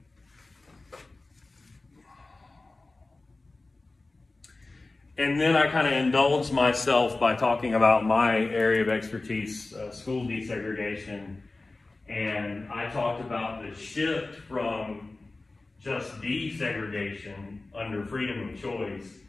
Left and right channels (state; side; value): quieter; right; 3.3 dB